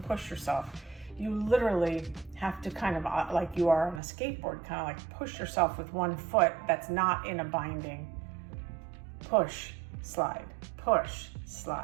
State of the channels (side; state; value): left; drops out; at 4.0 s